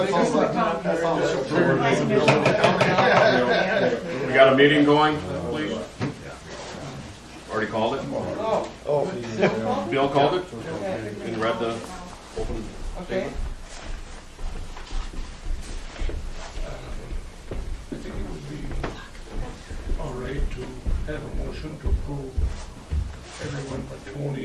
We got a meeting going, please? Already called it? Bill called it? And read the open Okay. statement? I think it would be all right to have a motion to approve everyone but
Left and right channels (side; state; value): both; identical; correlation 1.00